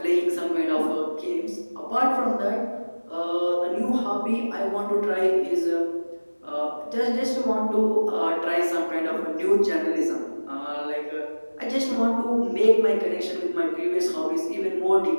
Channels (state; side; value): inverted; both; correlation -1.00